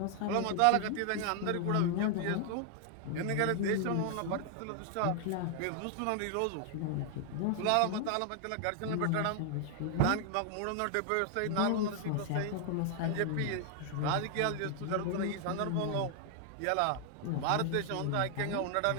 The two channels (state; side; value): different; both; correlation 0.00